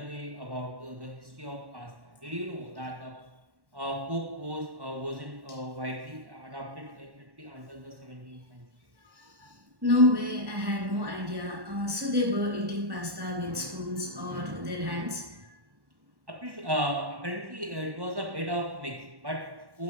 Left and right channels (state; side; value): late; left; 1.1 ms